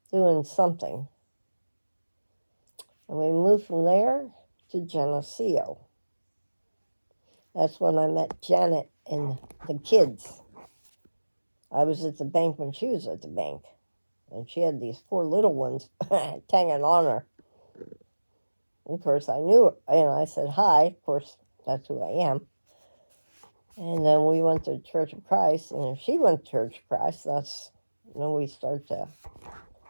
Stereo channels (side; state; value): both; inverted; correlation -1.00